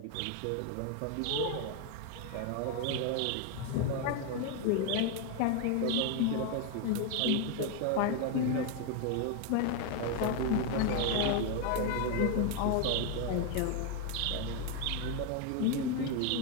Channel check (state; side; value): different; both; correlation 0.01